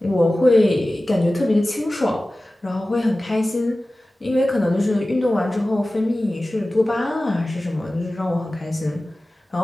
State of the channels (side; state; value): both; normal; correlation 0.96